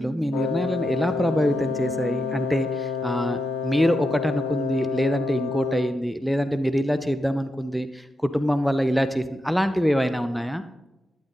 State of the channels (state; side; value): normal; both; correlation 0.86